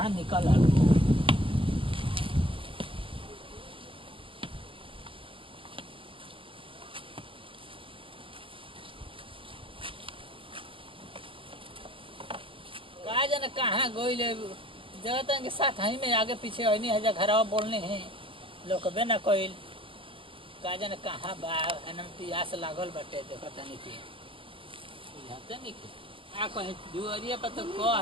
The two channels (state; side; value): late; left; 0.25 ms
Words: निकल आ कहा जाने कहाँ गोइले जगत के साथ हई में आगे पीछे हई है घरवा बोलने हैं लोग बे ना कोइल का जाने कहाँ बा एनम पियास लागल बाटे देखत नहीं कि बुझाते नहीं कि आ कहे दुआरिया पर तो